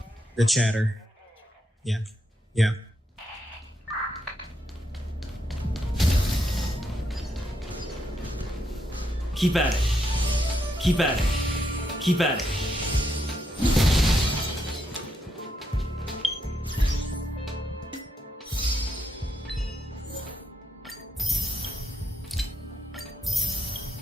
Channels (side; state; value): both; normal; correlation 0.80